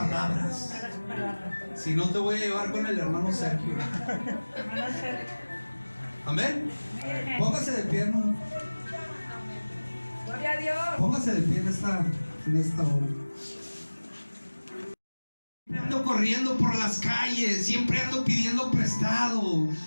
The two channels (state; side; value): inverted; both; correlation -1.00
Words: Si no, te voy a llevar con el hermano Sergio. Amén. Póngase de pie, hermano. Gloria a Dios. Póngase de pie en esta hora. Ando corriendo por las calles, siempre ando pidiendo prestado,